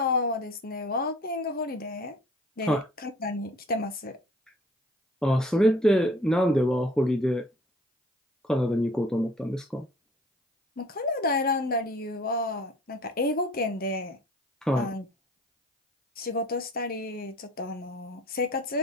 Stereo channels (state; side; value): normal; both; correlation 0.51